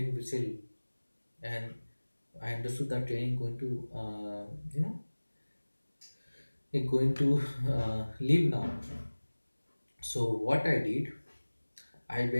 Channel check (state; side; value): inverted; both; correlation -1.00